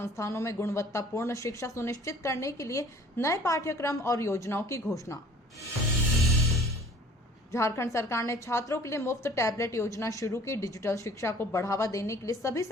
में गुणवत्तापूर्ण शिक्षा सुनिश्चित करने के लिए नए पाठ्यक्रम और योजनाओं की घोषणा। झारखंड सरकार ने छात्रों के लिए मुफ्त टैबलेट योजना शुरू की। डिजिटल शिक्षा को बढ़ावा देने के लिए सभी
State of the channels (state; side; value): normal; both; correlation 0.51